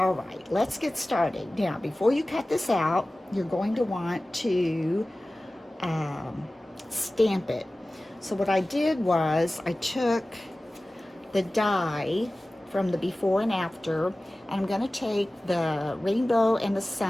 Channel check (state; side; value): normal; both; correlation 0.97